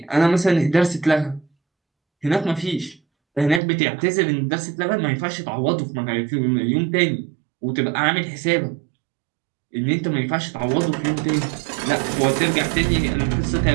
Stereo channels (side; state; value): left; drops out; at 3.6 s